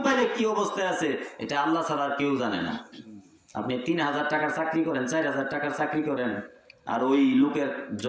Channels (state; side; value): identical; both; correlation 1.00